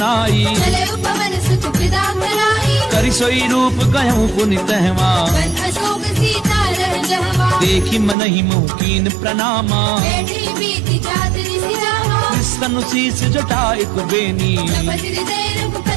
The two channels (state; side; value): drops out; left; at 8.2 s